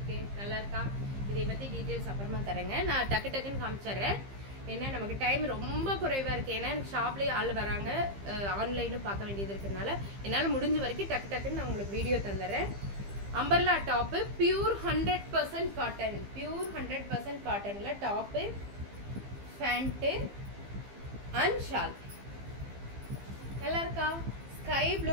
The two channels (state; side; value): late; left; 15 ms